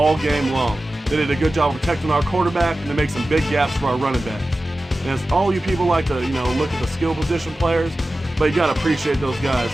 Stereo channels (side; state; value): both; normal; correlation 0.95